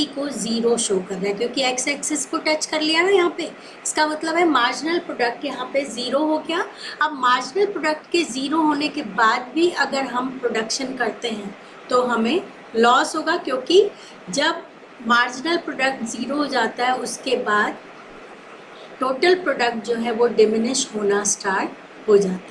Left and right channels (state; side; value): identical; both; correlation 1.00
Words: को 0 शो कर रहा है, क्योंकि एक्स एक्सिस को टच कर लिया ना यहाँ पे। इसका मतलब है मार्जिनल प्रोडक्ट यहाँ पे 0 हो गया। अब मार्जिनल प्रोडक्ट के 0 होने के बाद भी अगर हम प्रोडक्शन करते हैं तो हमें लॉस होगा, क्योंकि जब मार्जिनल प्रोडक्ट 0 हो जाता है उसके बाद टोटल प्रोडक्ट जो है वो डिमिनिश होना स्टार्ट हो